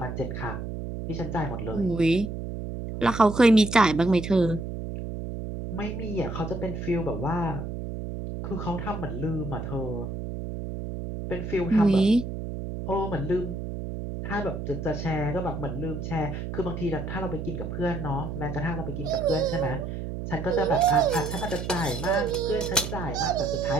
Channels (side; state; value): right; noise; hum, 6 dB below the sound